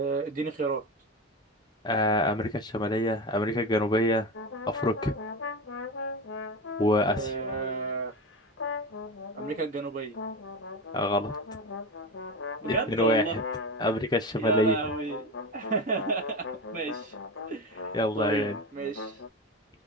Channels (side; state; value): both; normal; correlation 0.23